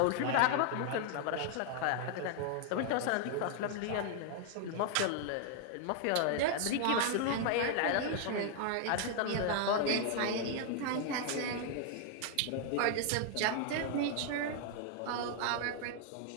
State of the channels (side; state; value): both; different; correlation 0.00